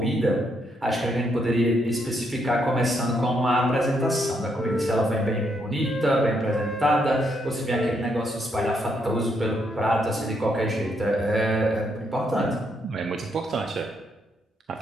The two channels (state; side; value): normal; both; correlation 0.76